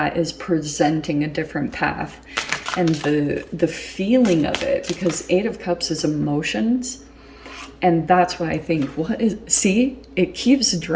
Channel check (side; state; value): both; identical; correlation 1.00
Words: is presenting a different path. And the feeling of it, because Eight of Cups is emotions, and that's what I think. What is, see, it keeps